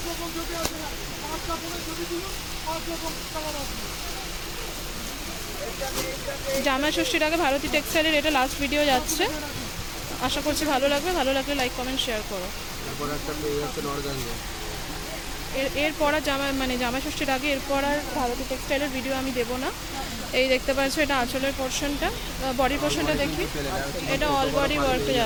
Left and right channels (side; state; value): both; identical; correlation 1.00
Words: রকম ছবি আসবে না, 5টা ফোনের ছবি দিল, 5 রকম কালার আসবে। জামাই ষষ্ঠীর আগে ভারতী টেক্সটাইলের এটা লাস্ট ভিডিও যাচ্ছে। আশা করছি ভালো লাগবে, ভালো লাগলে লাইক কমেন্ট শেয়ার করো। তারপর একটা পেয়ে যাচ্ছেন অর্গানজা। এরপর আর জামাই ষষ্ঠীর আগে এরপর আর ভারতী টেক্সটাইলের ভিডিও আমি দেবো না। এই দেখতে পাচ্ছ, এটা আঁচলের পোর্শনটা, বডির পোর্শনটা দেখি, এটা অল বডি ওয়ার্কে